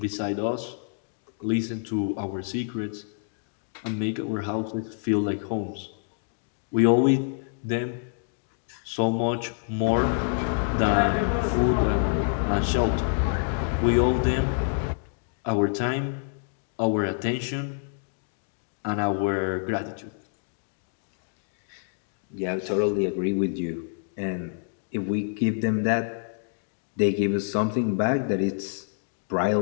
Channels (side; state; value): right; silent; digital silence